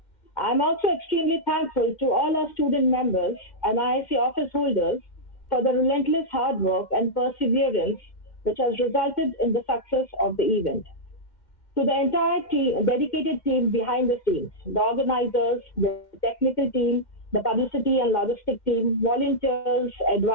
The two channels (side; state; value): right; late; 2.1 ms